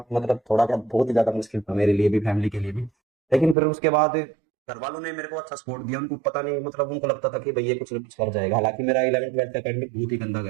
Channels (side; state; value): left; drops out; at 3.6 s